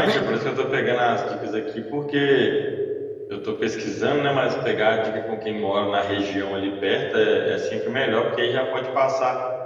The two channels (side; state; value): both; identical; correlation 1.00